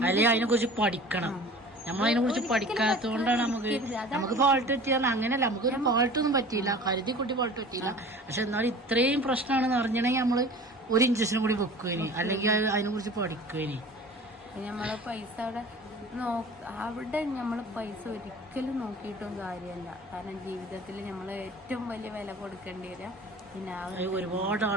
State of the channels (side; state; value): both; normal; correlation 0.42